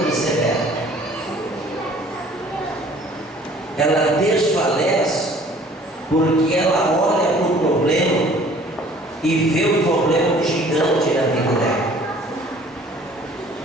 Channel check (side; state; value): both; normal; correlation 0.53